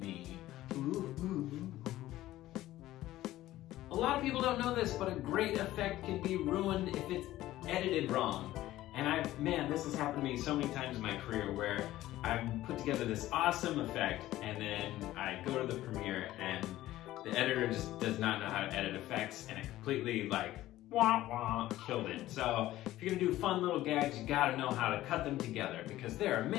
Ooh, ooh. A lot of people don't know this, but a great effect can be ruined if it's edited wrong. And man, this has happened to me so many times in my career where I've put together this awesome effect and then I go to the premiere and the editor just does not know how to edit effects and it completely like, wah wah, killed it. So if you're gonna do fun little gags, you gotta know how to cut them together because there are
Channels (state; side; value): quieter; right; 15.2 dB